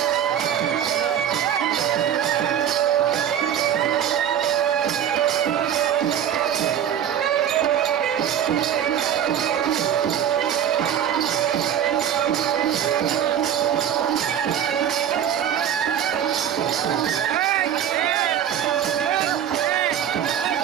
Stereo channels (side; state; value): left; quieter; 9.6 dB